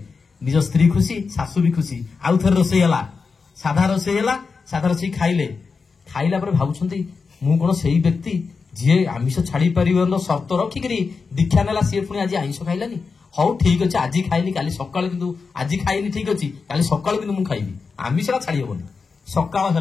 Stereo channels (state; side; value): quieter; right; 4.9 dB